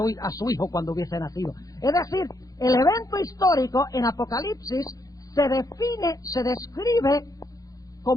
su hijo cuando hubiese nacido. Es decir, el evento histórico en Apocalipsis se define, se describe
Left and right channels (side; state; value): right; late; 0.17 ms